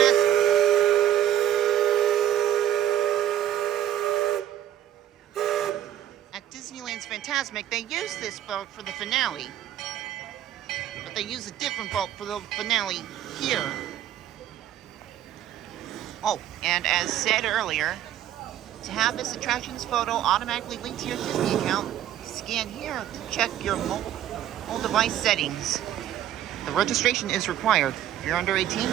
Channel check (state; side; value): quieter; left; 11.5 dB